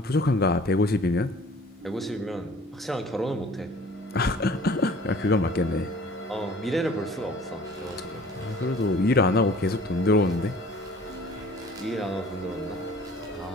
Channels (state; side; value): normal; both; correlation 0.49